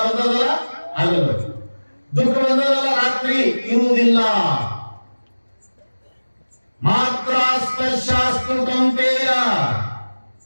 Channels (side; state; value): both; inverted; correlation -1.00